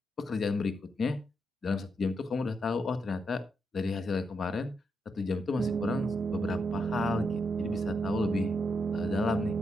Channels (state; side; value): normal; both; correlation 0.81